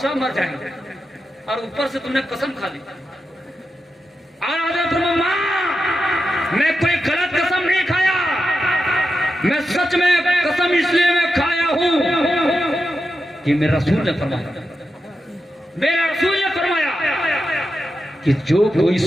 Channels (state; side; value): normal; both; correlation 0.89